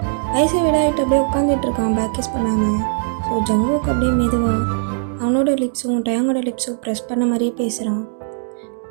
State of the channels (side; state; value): left; silent; digital silence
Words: ஐஸை விடாயிட்டு அப்படியே உட்காந்துட்ருக்கான் பேக் கிஸ் பண்ணாமல். ஸோ ஜங்குக்கு அப்படியே மெதுவாக அவனோட லிப்ஸும் டயாங்கோட லிப்ஸும் ப்ரெஸ் பண்ண மாதிரியே பேசுகிறான்.